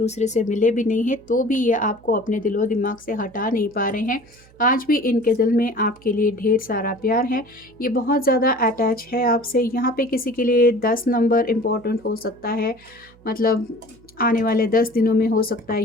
से मिले भी नहीं हैं, तो भी ये आपको अपने दिलो दिमाग से हटा नहीं पा रहे हैं। आज भी इनके दिल में आपके लिए ढेर सारा प्यार है। ये बहुत ज़्यादा अटैच है आपसे। यहाँ पे किसी के लिए 10 नंबर इम्पोर्टेंट हो सकता है, मतलब आने वाले 10 दिनों में हो सकता है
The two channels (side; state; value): right; noise; hum, 27 dB below the sound